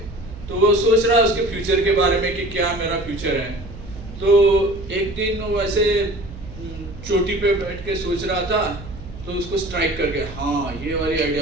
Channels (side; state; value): right; noise; hum, 14 dB below the sound